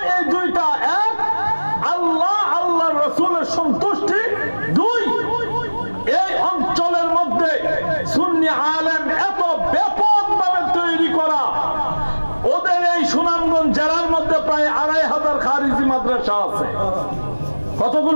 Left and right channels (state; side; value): inverted; both; correlation -1.00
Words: এই দুইটা। এক, আল্লাহ আল্লাহর রাসূলের সন্তুষ্টি। দুই, এই অঞ্চলের মধ্যে সুন্নি আলেম এত ব্যাপকভাবে তৈরি করা। ওদের এই সুনামগঞ্জ জেলার মধ্যে প্রায় 2500 খারিজি মাদ্রাসা আছে।